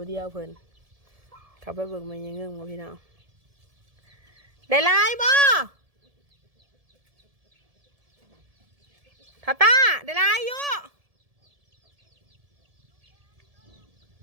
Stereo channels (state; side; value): late; left; 1.7 ms